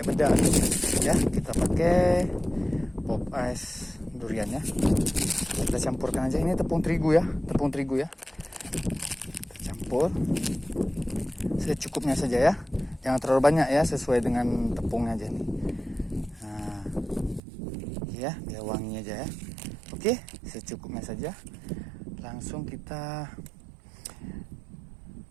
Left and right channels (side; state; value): left; drops out; at 17.4 s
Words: bedak ya. Kita pakai pop ice durian ya. Kita campurkan aja, ini tepung terigu ya. Kita campur secukupnya saja ya, jangan terlalu banyak ya, sesuai dengan tepungnya aja nih. Nah ya, biar wangi aja ya. Oke, secukupnya saja. Langsung kita